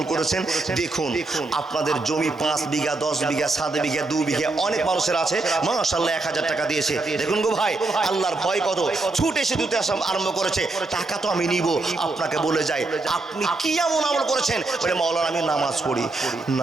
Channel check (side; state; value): left; quieter; 3.3 dB